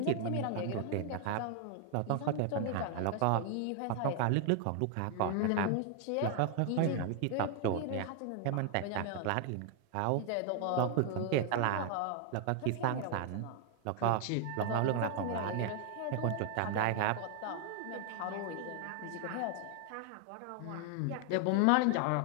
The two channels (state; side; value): different; both; correlation 0.00